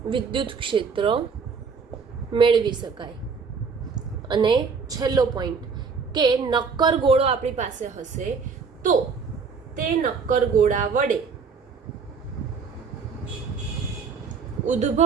વિદ્યુત ક્ષેત્ર મેળવી શકાય. અને છેલ્લો પોઈન્ટ કે નક્કર ગોળો આપણી પાસે હશે તો તે નક્કર ગોળા વડે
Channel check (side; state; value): left; quieter; 5.4 dB